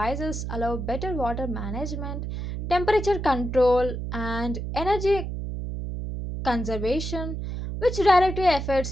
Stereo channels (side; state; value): right; noise; hum, 5 dB below the sound